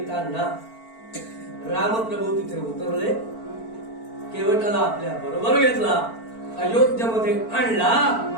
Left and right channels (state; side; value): late; right; 4.5 ms